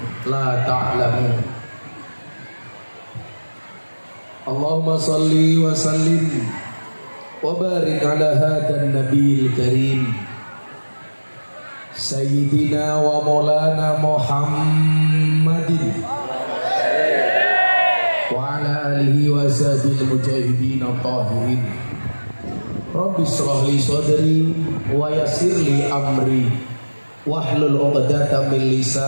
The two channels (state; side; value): inverted; both; correlation -1.00